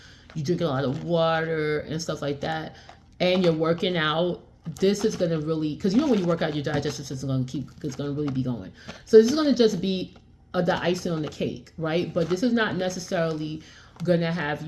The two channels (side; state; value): both; identical; correlation 1.00